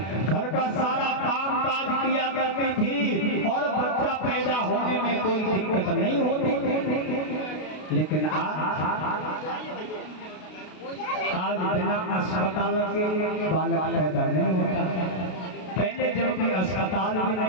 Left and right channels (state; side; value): late; right; 32 ms